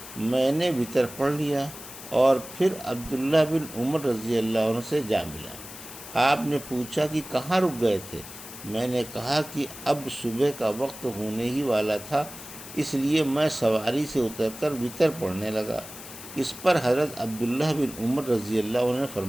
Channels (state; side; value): noise; left; hiss, 14 dB below the sound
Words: میں نے وتر پڑھ لیا اور پھر عبداللہ بن عمر رضی اللہ عنہ سے جا ملا۔ آپ نے پوچھا کہ کہاں رک گئے تھے؟ میں نے کہا کہ اب صبح کا وقت ہونے ہی والا تھا، اس لیے میں سواری سے اتر کر وتر پڑھنے لگا۔ اس پر حضرت عبداللہ بن عمر رضی اللہ عنہ نے